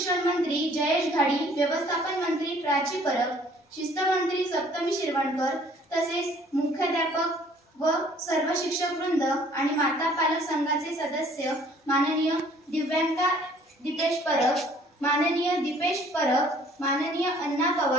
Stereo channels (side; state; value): both; normal; correlation 0.57